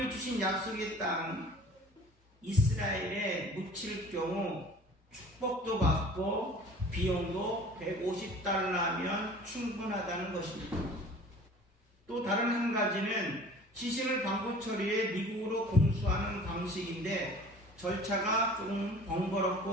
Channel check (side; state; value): both; normal; correlation 0.46